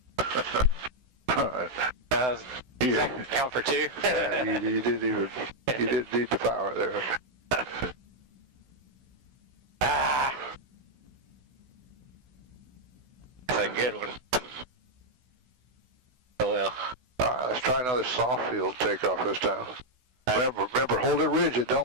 All right. Yeah. Count for 2? Yeah, you didn't need the power there. That's a good one. Oh well. All right, let's try another soft field takeoff this time. Remember, hold it rigid.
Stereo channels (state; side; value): late; left; 16 ms